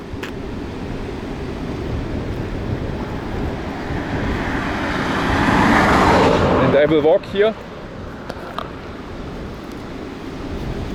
And I will walk here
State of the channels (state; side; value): identical; both; correlation 1.00